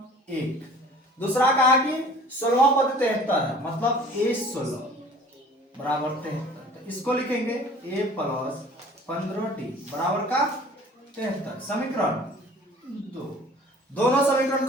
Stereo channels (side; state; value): both; normal; correlation 0.48